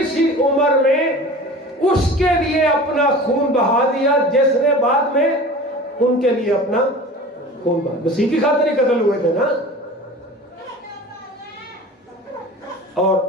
سی عمر میں اس کے لیے اپنا خون بہا دیا جس نے بعد میں ان کے لیے اپنا خون بہا۔ مسیح کی خاطر ہی قتل ہوئے تھے نا۔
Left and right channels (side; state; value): both; normal; correlation 0.38